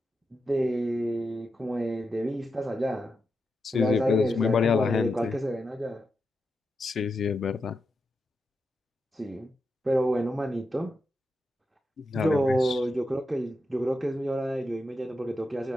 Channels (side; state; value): both; normal; correlation 0.87